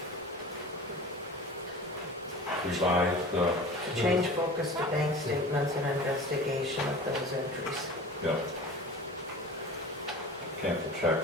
revise the, To change focus to bank statements and investigation of those entries. cancel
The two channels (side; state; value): both; normal; correlation 0.37